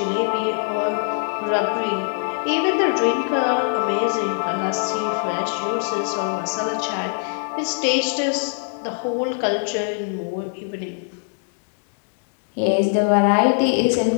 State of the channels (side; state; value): right; silent; 63 dB below the other